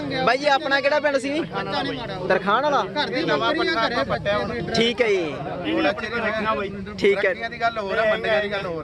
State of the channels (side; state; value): both; identical; correlation 1.00